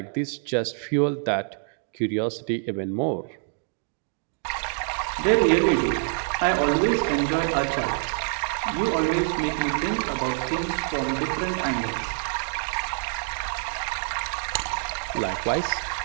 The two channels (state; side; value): silent; left; 61 dB below the other